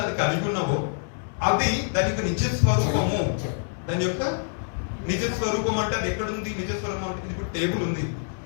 అది కలిగి ఉన్నావో అది దాని యొక్క నిజ స్వరూపము. దాని యొక్క నిజ స్వరూపం అంటే అది ఎక్కడుంది? నిజ స్వరూపం అంటే ఇది టేబుల్ ఉంది,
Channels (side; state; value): right; silent; digital silence